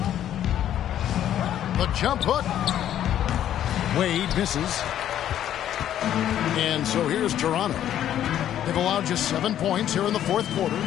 The jump hook. Wade misses. And so here's Toronto. They've allowed just 7 points here in the fourth quarter.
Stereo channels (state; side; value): quieter; right; 11.0 dB